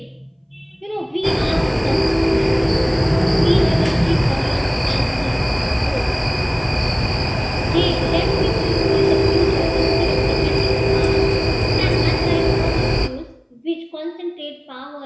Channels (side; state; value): both; identical; correlation 1.00